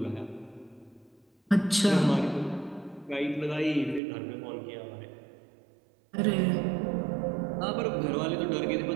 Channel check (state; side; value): drops out; left; at 4.0 s